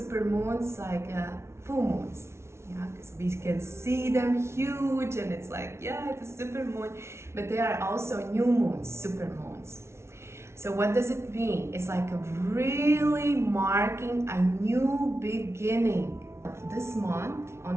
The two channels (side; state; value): left; late; 0.13 ms